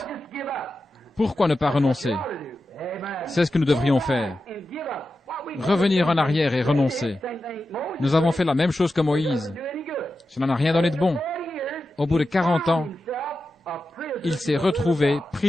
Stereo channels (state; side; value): normal; both; correlation 0.91